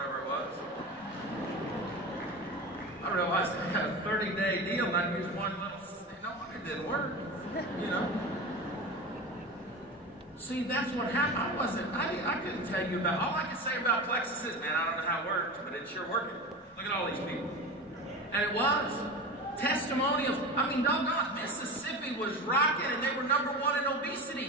it was. I realized I had a 30-day deal and I used one little, no wonder it didn't work, you know. See, that's what happened. I couldn't tell you about, all I could say about Plexus is, man, I don't know how it works, but it's sure working. Look at all these people. And it was. Testimonials. I mean, doggone, Mississippi was rocking and they were #1 in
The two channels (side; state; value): both; normal; correlation 0.28